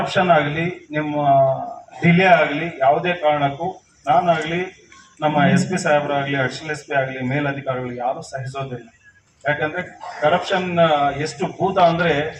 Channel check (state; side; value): identical; both; correlation 1.00